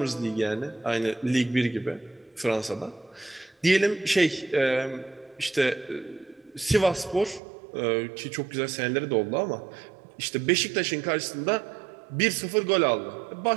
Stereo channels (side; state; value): left; drops out; at 7.4 s